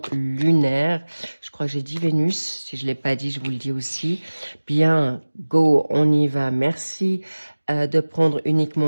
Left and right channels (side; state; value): both; inverted; correlation -1.00